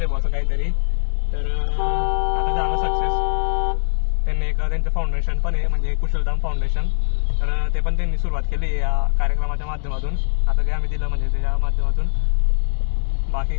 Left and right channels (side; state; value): right; silent; digital silence